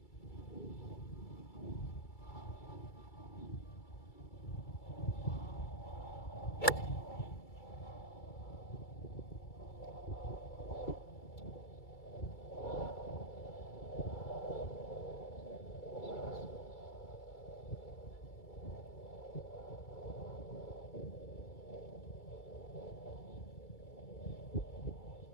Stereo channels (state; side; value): late; right; 2.3 ms